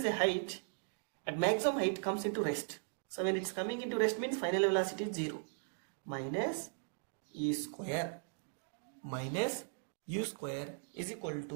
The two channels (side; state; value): left; silent; digital silence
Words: a height, at maximum height comes into rest. So when it's coming into rest means final velocity is 0. Minus e square minus u square is equal